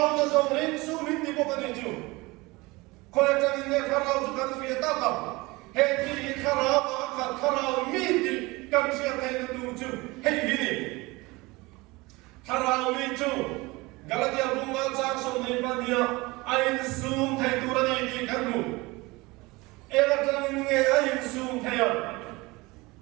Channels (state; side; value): quieter; left; 22.8 dB